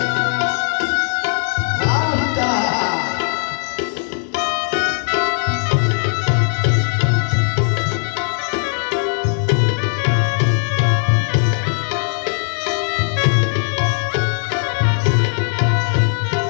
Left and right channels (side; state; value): right; silent; 62 dB below the other